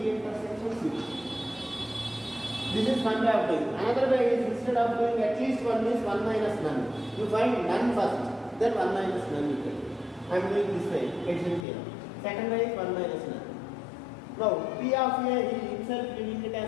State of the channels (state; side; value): drops out; right; at 11.7 s